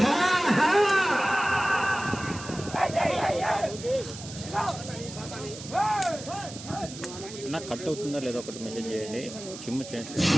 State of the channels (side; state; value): right; noise; hiss, 13 dB below the sound